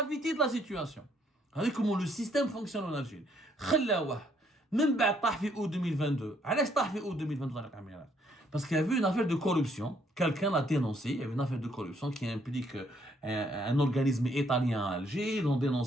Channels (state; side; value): normal; both; correlation 0.68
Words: de la situation. Regardez comment le système fonctionne en Algérie. Même بعد août 2022. علاش août 2022 Tarek Amirat? Parce qu'il y avait une affaire de corruption. Quelqu'un l'a dénoncé. Il y avait une affaire de corruption qui implique un organisme italien à Alger. Ils ont